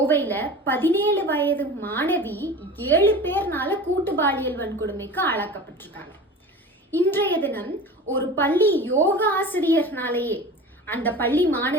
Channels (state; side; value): normal; both; correlation 0.35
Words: 17 வயது மாணவி 7 பேர்னால கூட்டு பாலியல் வன்கொடுமைக்கு ஆளாக்கப்பட்டிருக்காங்க. இன்றைய தினம் ஒரு பள்ளி யோகா ஆசிரியர்னாலேயே அந்த பள்ளி